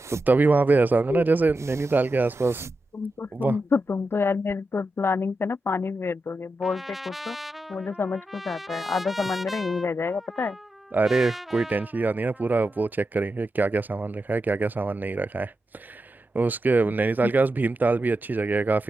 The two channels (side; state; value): both; normal; correlation 0.89